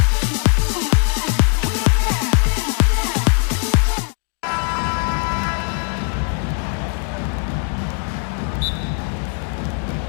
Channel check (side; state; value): right; quieter; 37.4 dB